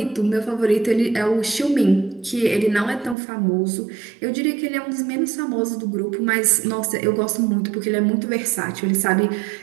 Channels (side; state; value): left; drops out; at 3.2 s